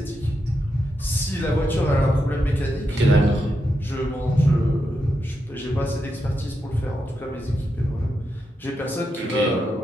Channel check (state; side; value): normal; both; correlation 0.85